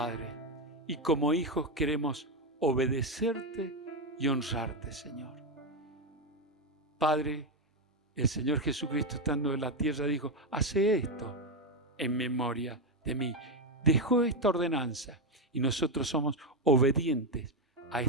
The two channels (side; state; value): both; normal; correlation 0.08